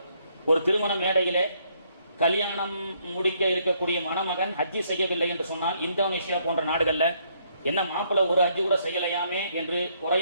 ஒரு திருமண மேடையிலே கல்யாணம் முடிக்க இருக்கக்கூடிய மணமகன் ஹஜ்ஜி செய்யவில்லை என்று சொன்னால் இந்தோனேஷியா போன்ற நாடுகள்ல என்ன மாப்பிள்ளை ஒரு ஹஜ்ஜி கூட செய்யலையாமே என்று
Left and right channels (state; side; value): inverted; both; correlation -0.70